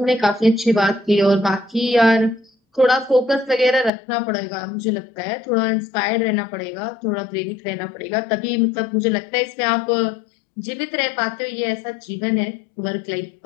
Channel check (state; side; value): drops out; right; at 3.9 s